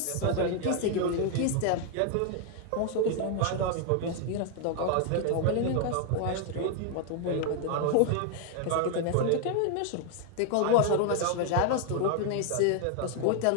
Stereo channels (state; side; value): different; both; correlation 0.00